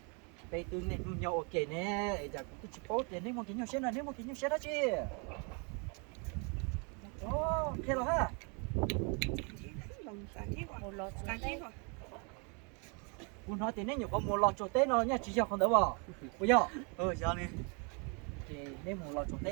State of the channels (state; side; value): quieter; left; 34.8 dB